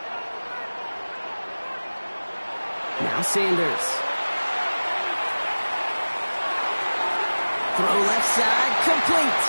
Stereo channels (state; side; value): inverted; both; correlation -1.00